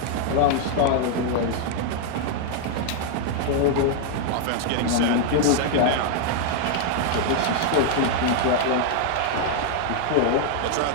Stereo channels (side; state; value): both; different; correlation 0.00